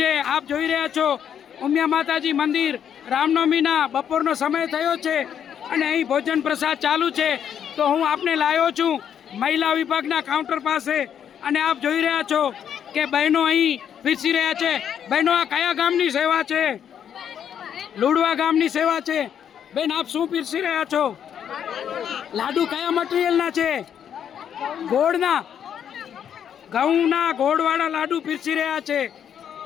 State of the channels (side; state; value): right; quieter; 8.8 dB